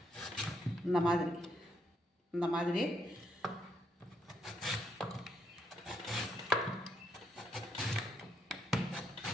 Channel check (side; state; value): both; normal; correlation 0.75